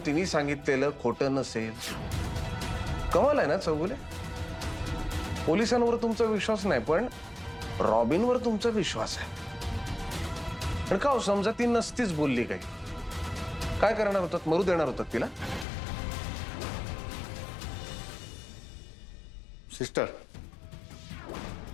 तिने सांगितलेलं खोटं नसेल? कमाल आहे ना चौगुले? पोलिसांवर तुमचा विश्वास नाही पण रॉबिनवर तुमचा विश्वास आहे. पण का हो, समजा ती नसतीच बोलली काही, काय करणार होतात? मरू देणार होतात तिला? सिस्टर,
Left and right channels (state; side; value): drops out; right; at 15.7 s